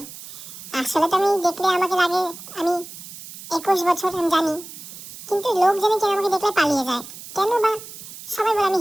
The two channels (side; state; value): right; noise; hiss, 14 dB below the sound